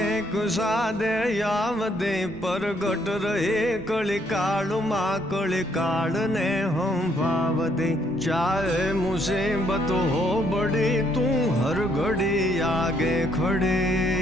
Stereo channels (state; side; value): noise; right; rumble, 18 dB below the sound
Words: एक सादे यावदे परगट रहे कली काल माँ कली काल ने हम भावदे चाहे मुसीबत हो बड़ी तू हर घड़ी आगे खड़े